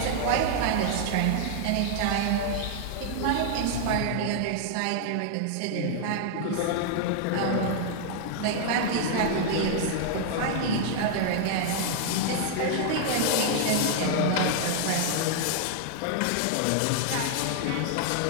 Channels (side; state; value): both; different; correlation 0.00